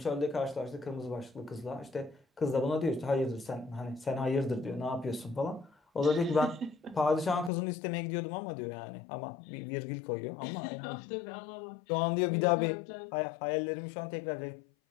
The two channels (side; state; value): right; drops out; at 7.5 s